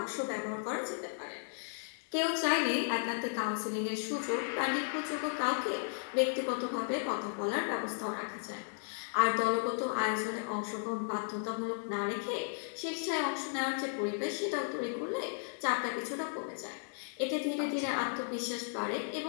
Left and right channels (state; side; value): silent; right; 54 dB below the other